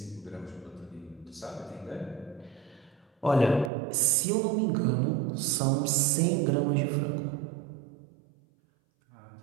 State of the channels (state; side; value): drops out; left; at 3.7 s